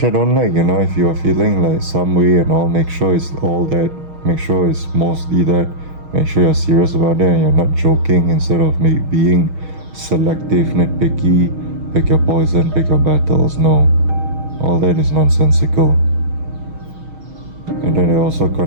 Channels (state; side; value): late; left; 6.3 ms